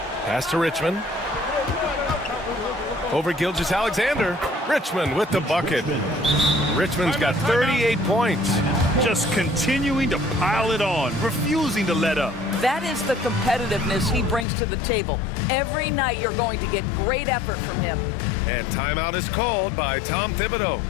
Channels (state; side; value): drops out; right; at 14.5 s